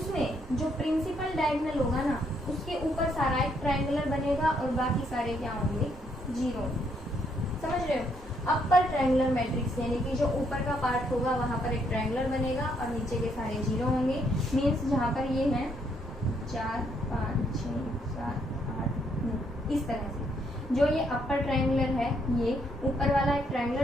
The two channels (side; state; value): both; normal; correlation 0.73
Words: जो प्रिंसिपल डायगोनल होगा ना, उसके ऊपर सारा एक ट्रायंगुलर बनेगा और बाकी सारे क्या होंगे 0। समझ रहे हो, अपर ट्रायंगुलर मैट्रिक्स यानी कि जो ऊपर का पार्ट होगा वहां पर एक ट्रायंगुलर बनेगा और नीचे के सारे 0 होंगे। मीन्स जहां पर ये है 4 5 6 7 8 9, इस तरह से जो ये अपर ट्रायंगुलर है, ये ऊपर वाला एक